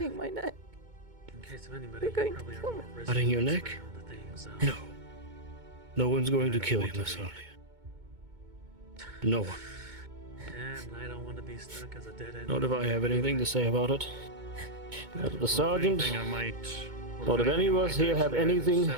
my neck. In case of anybody, You're going you probably to are kill more me. resident Cutting your around neck? the things, No. No one's going to I don't kill you, want to Miss be. Alia. No one. And I don't want to be stuck as a dead end. Not if I have anything to say about it. Not if the sergeant, Anything I might, or not if any of anything I us might here have actually either anything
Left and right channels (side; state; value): left; late; 2.2 ms